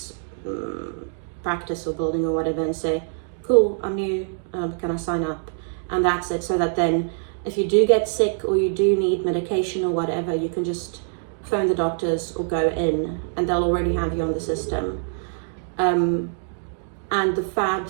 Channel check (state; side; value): silent; left; digital silence